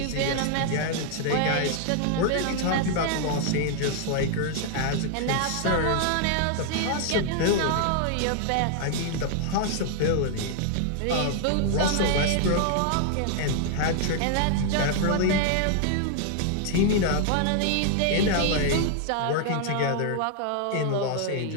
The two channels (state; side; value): different; both; correlation 0.00